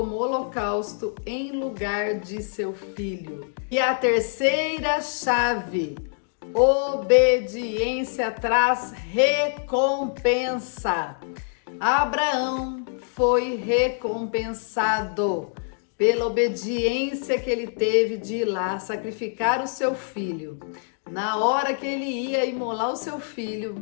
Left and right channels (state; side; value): silent; right; digital silence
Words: holocausto em lugar de seu filho. E a terceira chave: obediência traz recompensa. Abraão foi recompensado pela obediência que ele teve de ir lá sacrificar o seu filho. Na hora que ele ia imolar o seu